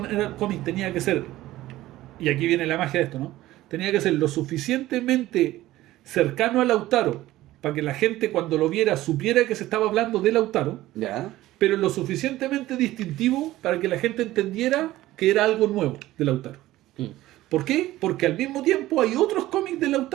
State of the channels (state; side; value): quieter; left; 16.0 dB